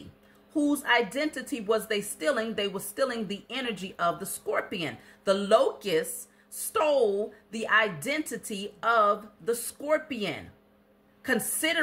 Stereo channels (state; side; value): identical; both; correlation 1.00